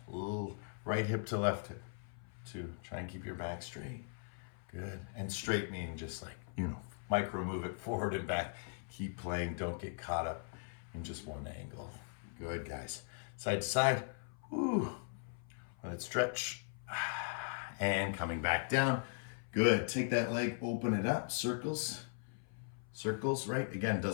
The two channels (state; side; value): silent; right; 52 dB below the other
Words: A little right hip to left hip. 2, try and keep your back straight. Good. And straight meaning just like, micro move it forward and back. Keep playing. Don't get caught up in just one angle. Good, guys. Side to side. Woo. Let it stretch. And coming back down. Good. Take that leg, open it up. Circles. Circles, right? Again,